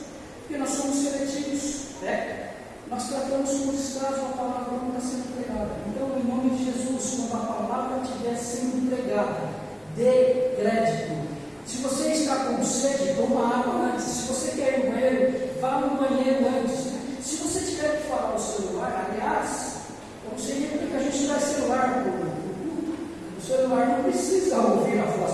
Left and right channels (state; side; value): identical; both; correlation 1.00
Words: Porque nós somos seletivos, né? Nós tratamos com descaso a palavra quando está sendo pregada. Então, em nome de Jesus, quando a palavra estiver sendo pregada, dê crédito. Se você está com sede, toma água antes. Se você quer ir no banheiro, vá no banheiro antes. Se você tiver que falar o celular, aliás, eu não sei nem porque a gente traz celular no culto. O celular não precisa ouvir a voz